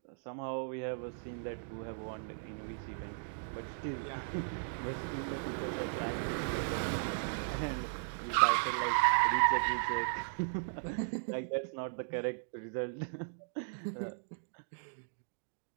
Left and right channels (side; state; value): left; silent; digital silence